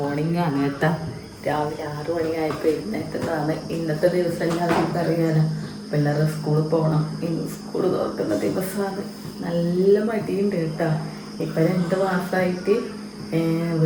ആണ് കേട്ടോ. രാവിലെ 6 മണിയായപ്പോൾ എഴുന്നേറ്റതാണ്. ഇന്നത്തെ ദിവസം എല്ലാവർക്കും അറിയാലോ, പിള്ളേരുടെ സ്കൂളിൽ പോകണം. ഇന്ന് സ്കൂൾ തുറക്കുന്ന ദിവസമാണ്. നല്ല മടിയുണ്ട് കേട്ടോ. ഇപ്പം 2 മാസമായിട്ട്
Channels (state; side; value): identical; both; correlation 1.00